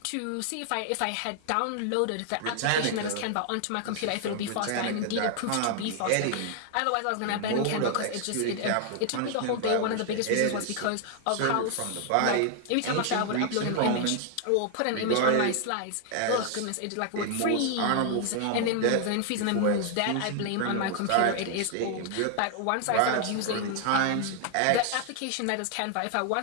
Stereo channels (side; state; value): both; different; correlation 0.00